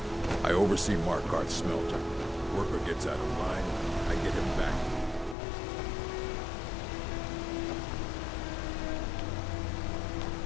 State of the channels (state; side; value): drops out; right; at 5.4 s